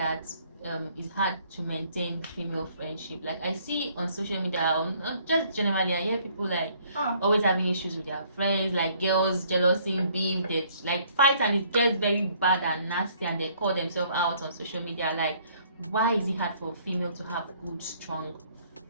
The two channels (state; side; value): inverted; both; correlation -0.62